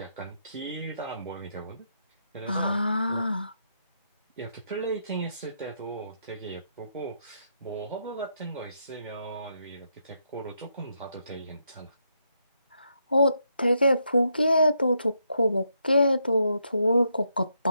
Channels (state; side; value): inverted; both; correlation -0.79